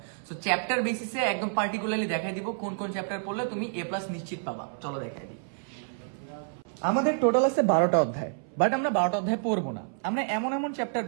সো চ্যাপ্টার বেসিসে একদম পার্টিকুলারলি দেখাই দিব কোন কোন চ্যাপ্টার পড়লে তুমি A+ নিশ্চিত পাবা। চলো দেখাই দিই। আমাদের টোটাল আছে 12টা অধ্যায়, বাট আমরা 12টা অধ্যায় পড়বো না। আমরা এমন এমন চ্যাপ্টার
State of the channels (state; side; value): silent; left; 59 dB below the other